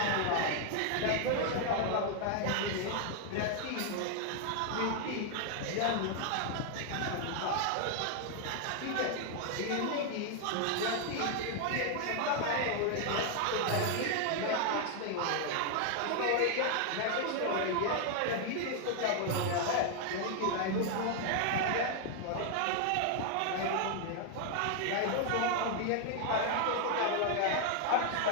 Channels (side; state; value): both; different; correlation 0.00